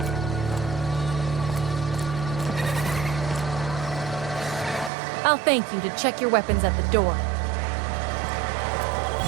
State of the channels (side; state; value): left; drops out; at 4.9 s